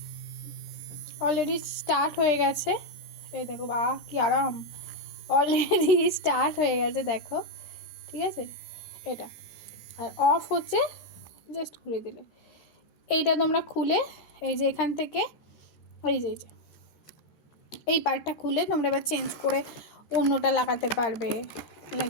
অলরেডি স্টার্ট হয়ে গেছে, এই দেখো বাহ কি আরাম, অলরেডি স্টার্ট হয়ে গেছে দেখো, ঠিক আছে। এটা আর অফ হচ্ছে জাস্ট ঘুরে দিলে। এইটা তোমরা খুলে এই যে এখান থেকে এই যে এই পার্টটা খুলে তোমরা এবার চেঞ্জ করে অন্যটা লাগাতে পারবে।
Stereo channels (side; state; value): right; late; 13 ms